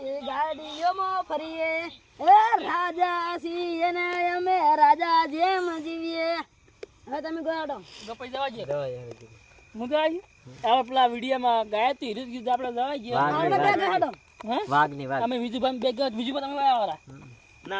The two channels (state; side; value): identical; both; correlation 1.00